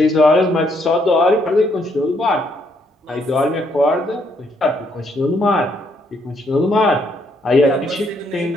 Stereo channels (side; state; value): both; normal; correlation 0.72